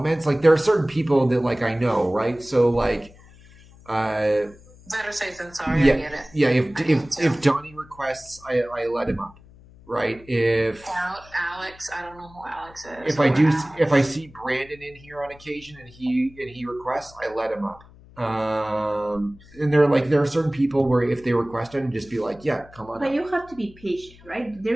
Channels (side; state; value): left; noise; hum, 23 dB below the sound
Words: like there are certain people that like I know, right? So like, better safe than sorry. Yeah, I get it. yeah. If Donnie requests, I let him up. Right. If Alex, I don't know who Alex is. If I see Brandon in here on occasion and he requests, I let him up. And there are certain people where if they request it, and just be like, yeah, come on. But up. you have to be patient, right? There